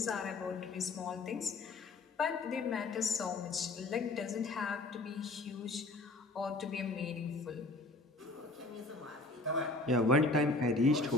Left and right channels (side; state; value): right; quieter; 3.0 dB